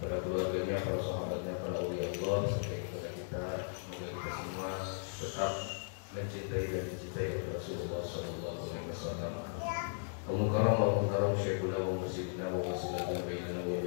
pada keluarganya, para sahabatnya, para aulia Allah, sampai kepada kita. Semoga kita semua tetap mencintai dan dicintai oleh Rasulullah sallallahu alaihi wasallam. Mukarram wa mukarram syekhuna wa musidina wa wasilana bainana wa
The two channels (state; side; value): silent; right; digital silence